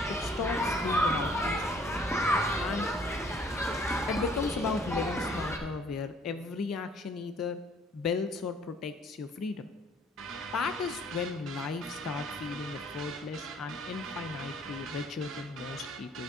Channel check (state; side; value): normal; both; correlation 0.58